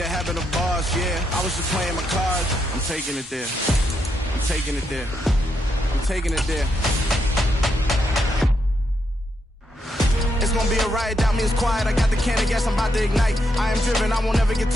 happen to bars, yeah. I was just playing my cards. I'm taking it there. I'm taking it there. I'm taking it there. It's gonna be a riot, doubt me it's quiet. I got the can of gas, I'm about to ignite. I am driven, I won't ever get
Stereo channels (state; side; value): normal; both; correlation 0.80